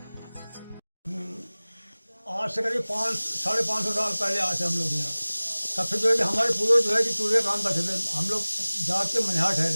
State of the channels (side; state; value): both; inverted; correlation -1.00